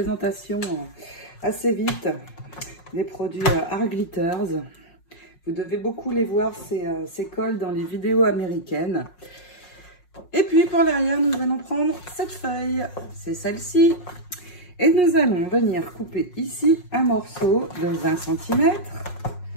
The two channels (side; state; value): right; late; 5.5 ms